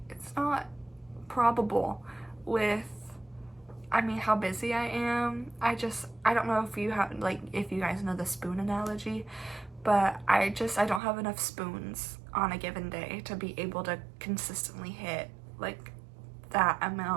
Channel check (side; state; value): left; drops out; at 11.0 s